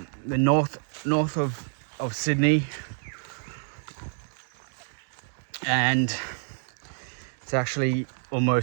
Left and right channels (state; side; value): silent; left; 59 dB below the other